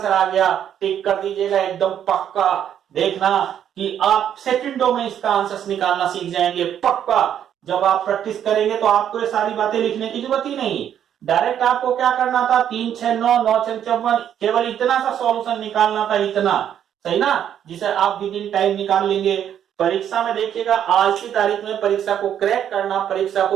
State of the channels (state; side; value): quieter; left; 9.6 dB